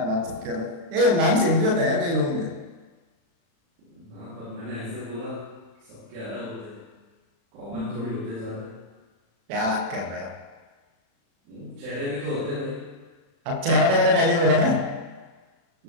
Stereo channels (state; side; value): late; left; 35 ms